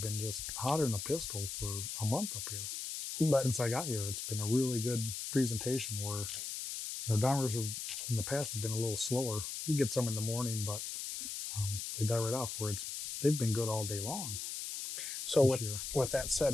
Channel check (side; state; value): left; noise; hiss, 5 dB below the sound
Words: just hotter than a pistol for a month up here. But since I got here, it's been a really good presentation where, you know, downriggers in the past have been a little slower. You get some in the morning, but they die right off where they've been good all day long. So with that said,